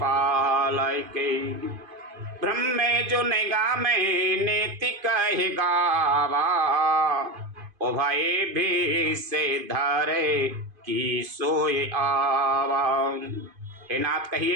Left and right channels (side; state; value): left; late; 2.5 ms